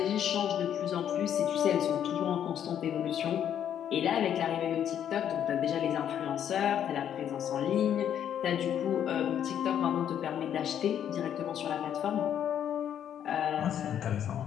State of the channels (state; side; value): quieter; right; 9.6 dB